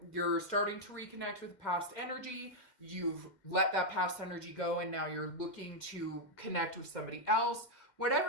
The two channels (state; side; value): late; right; 2.1 ms